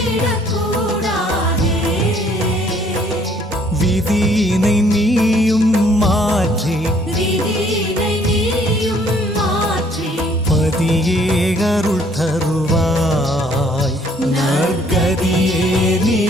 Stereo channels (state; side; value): normal; both; correlation 0.62